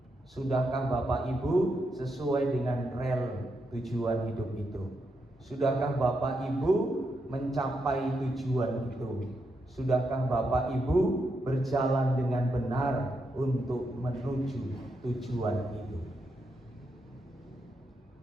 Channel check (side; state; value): both; normal; correlation 0.82